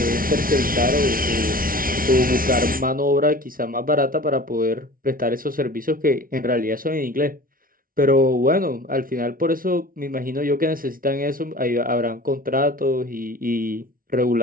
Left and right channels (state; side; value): late; left; 0.42 ms